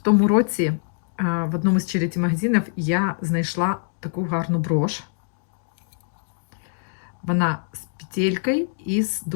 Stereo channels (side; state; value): right; silent; digital silence